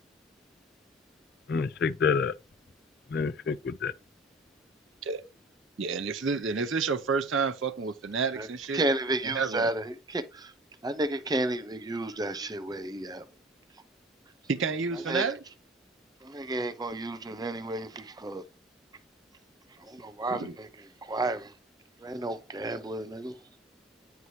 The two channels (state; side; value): normal; both; correlation 0.41